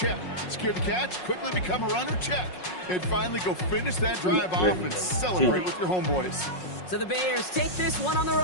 Secure the catch, quickly become a runner, check. And finally go finish that drive off and celebrate with your homeboys. So the Bears take this one on the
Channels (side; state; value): right; late; 5.5 ms